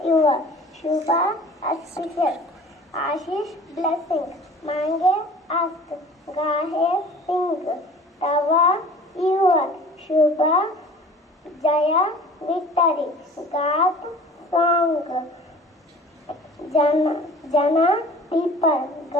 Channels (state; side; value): normal; both; correlation 0.45